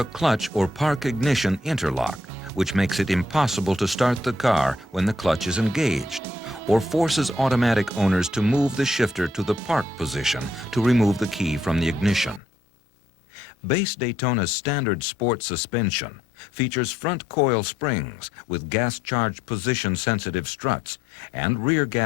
clutch or park ignition interlock, which makes it impossible to start the car when the clutch is engaged, or forces automatic owners to move the shifter to the park position to remove the key from the ignition. Base Daytona's standard sport suspension features front coil springs with gas-charged position-sensitive struts and rear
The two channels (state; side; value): drops out; right; at 12.4 s